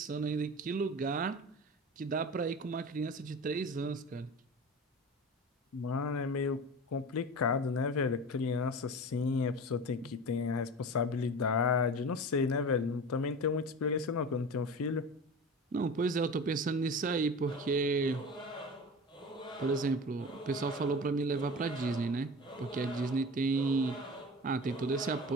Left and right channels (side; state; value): both; normal; correlation 0.33